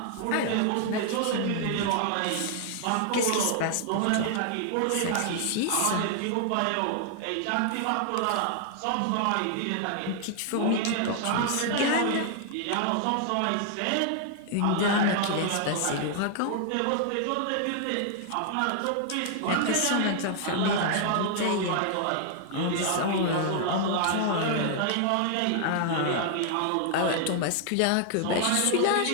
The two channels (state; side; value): different; both; correlation 0.00